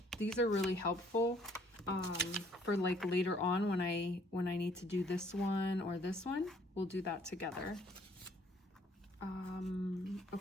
these are really helpful for like later on when I need to do this one or this one. We'll do that together.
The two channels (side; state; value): both; normal; correlation 0.62